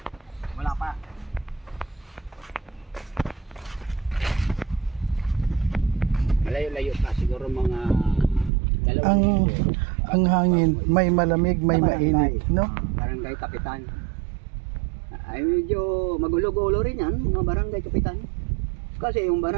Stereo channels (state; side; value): drops out; left; at 8.5 s